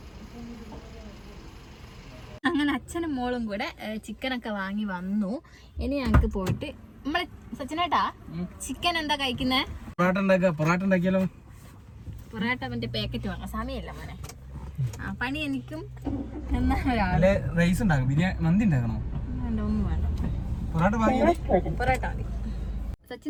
അങ്ങനെ അച്ഛനും മോളും കൂടെ ചിക്കനൊക്കെ വാങ്ങി വന്നു. ഇനി ഞങ്ങൾക്ക് പോയിട്ട് നമ്മളെ സച്ചിനേട്ടാ ചിക്കൻ എന്താ കഴിക്കുന്നേ? പൊറാട്ട മറ്റേ പാക്കറ്റ് വാങ്ങാം. സമയമില്ല മോനെ. പണി എനിക്കും പൊറാട്ട മതി.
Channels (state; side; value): identical; both; correlation 1.00